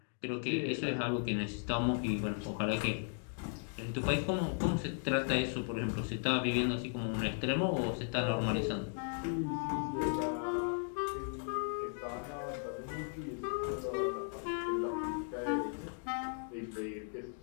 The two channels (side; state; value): right; silent; 53 dB below the other